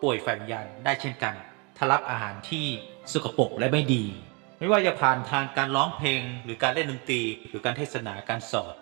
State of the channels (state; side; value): quieter; left; 30.9 dB